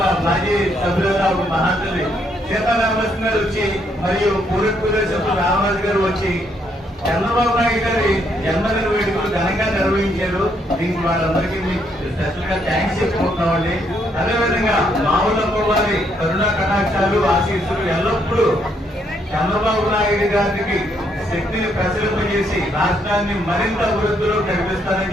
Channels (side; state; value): both; normal; correlation 0.73